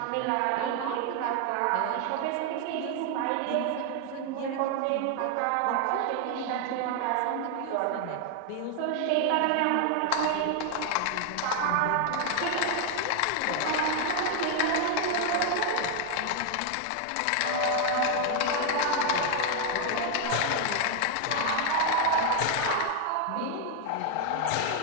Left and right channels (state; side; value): different; both; correlation 0.00